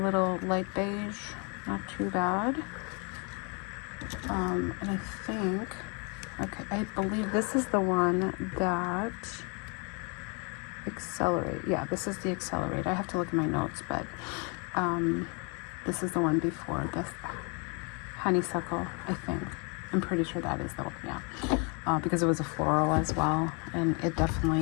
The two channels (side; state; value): right; quieter; 34.0 dB